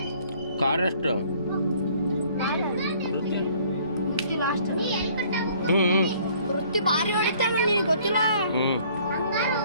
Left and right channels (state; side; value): inverted; both; correlation -0.58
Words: ಕಾರಷ್ಟು ವೃತ್ತಿ ಭಾರಿ ಹೊಡಿತಾನೆ ನಿನಗೆ ಗೊತ್ತಿಲ್ಲ.